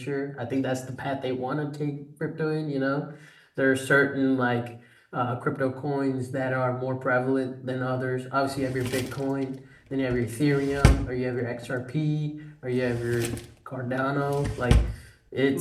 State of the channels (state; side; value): identical; both; correlation 1.00